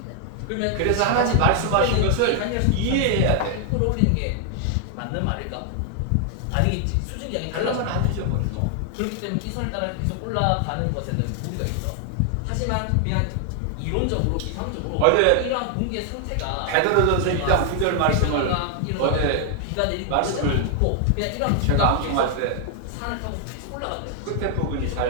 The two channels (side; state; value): both; different; correlation 0.00